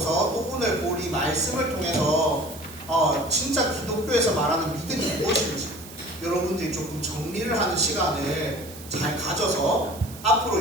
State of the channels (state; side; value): noise; right; hiss, 17 dB below the sound